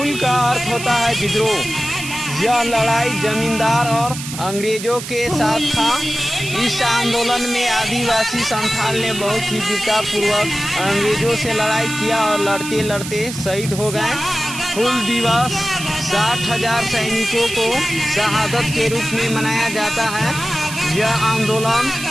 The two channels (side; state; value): right; noise; hiss, 9 dB below the sound